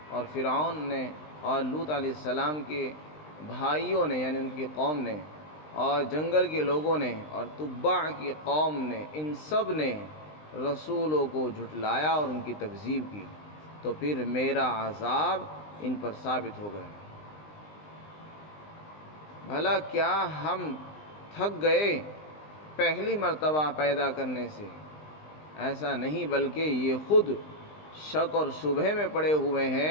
اور فرعون نے اور لوط علیہ السلام کے بھائیوں نے یعنی ان کی قوم نے اور جنگل کے لوگوں نے اور تبع کی قوم نے، ان سب نے رسولوں کو جھٹلایا اور ان کی تکذیب کی، تو پھر میرا عذاب ان پر ثابت ہو گیا۔ بھلا کیا ہم تھک گئے پہلی مرتبہ پیدا کرنے سے؟ ایسا نہیں، بلکہ یہ خود شک اور شبہے میں پڑے ہوئے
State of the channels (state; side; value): late; right; 20 ms